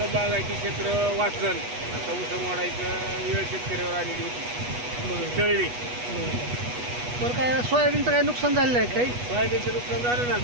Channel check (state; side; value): late; left; 8.2 ms